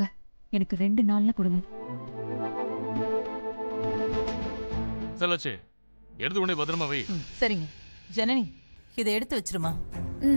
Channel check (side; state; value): both; inverted; correlation -1.00